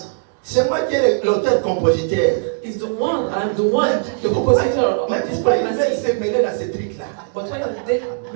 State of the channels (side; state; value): left; silent; digital silence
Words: C'est moi qui est l'auteur-compositeur. It's the one, I'm the one, the compositor Mais of this pourquoi ils veulent pregnancy. se mêler dans ces trucs-là? But why are they